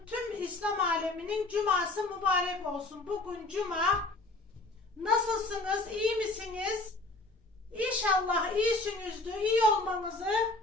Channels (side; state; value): right; quieter; 3.0 dB